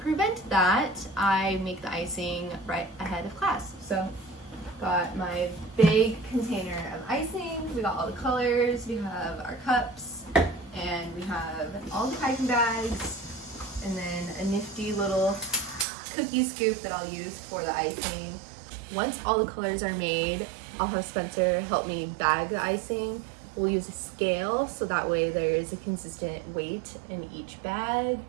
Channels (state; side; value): drops out; left; at 15.9 s